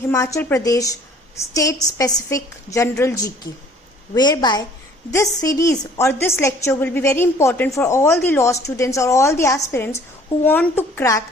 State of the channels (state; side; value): normal; both; correlation 0.55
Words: Pradesh state specific general GK, whereby this series or this lecture will be very important for all the law students or all the aspirants who want to